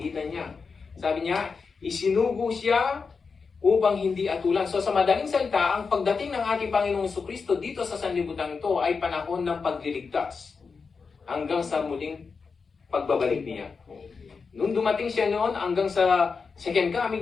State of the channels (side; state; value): right; quieter; 5.1 dB